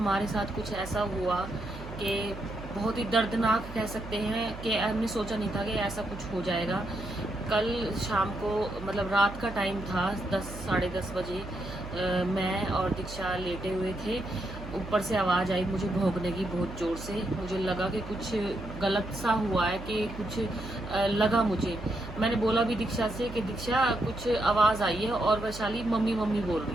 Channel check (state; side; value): noise; right; hum, 12 dB below the sound